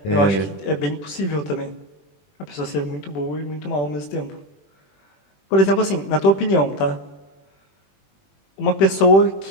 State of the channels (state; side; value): late; right; 21 ms